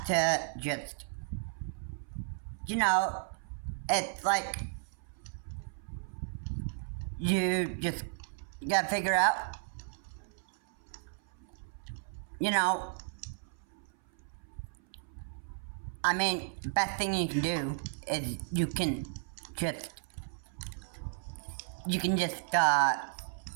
to just, you know, it's like you gotta figure out, you know, I mean, the best thing you can do is you can just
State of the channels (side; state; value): left; silent; 55 dB below the other